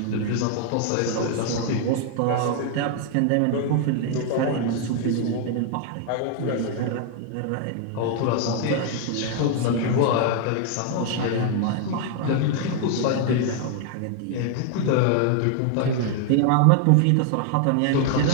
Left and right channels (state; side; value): different; both; correlation 0.00